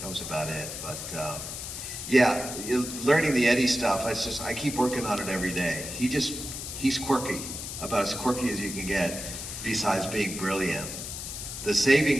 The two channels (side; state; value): left; noise; hiss, 7 dB below the sound